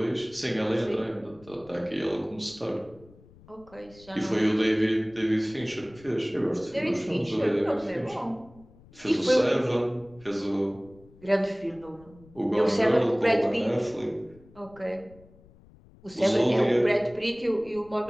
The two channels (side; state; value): left; noise; rumble, 24 dB below the sound